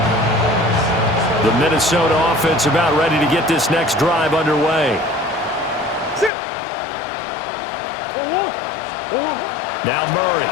The Minnesota offense about ready to get this next drive underway. Sit. Now Murray.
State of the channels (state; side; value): drops out; right; at 6.3 s